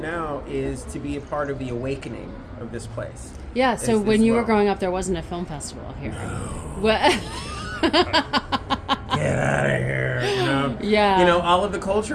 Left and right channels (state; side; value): identical; both; correlation 1.00